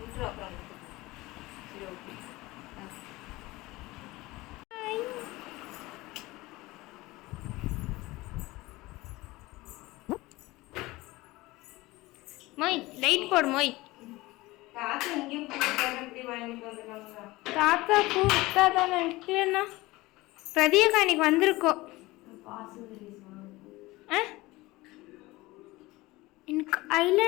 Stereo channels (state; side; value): quieter; right; 20.3 dB